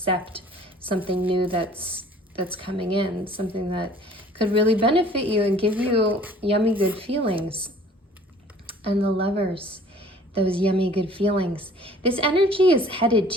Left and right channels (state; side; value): normal; both; correlation 0.52